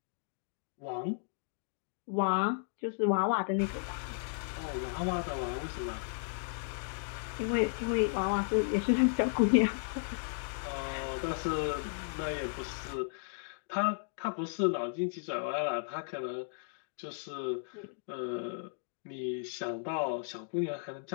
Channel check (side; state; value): right; silent; digital silence